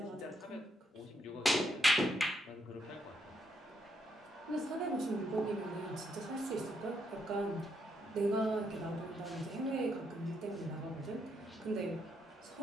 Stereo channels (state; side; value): normal; both; correlation 0.77